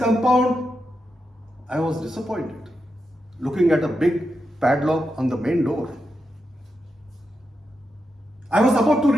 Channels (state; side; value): normal; both; correlation 0.86